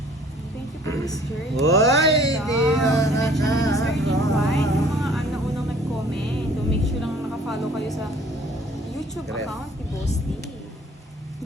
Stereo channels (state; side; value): normal; both; correlation 0.54